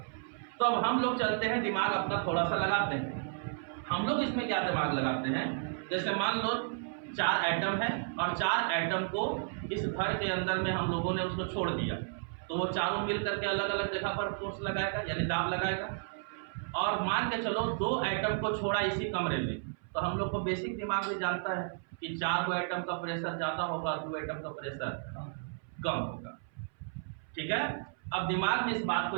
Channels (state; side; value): silent; left; 56 dB below the other